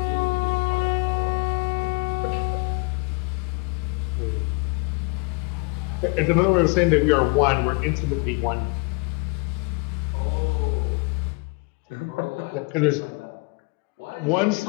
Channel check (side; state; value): right; quieter; 28.2 dB